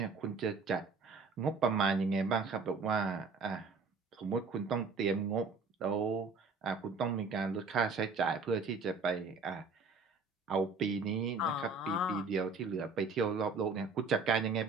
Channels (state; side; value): quieter; left; 4.4 dB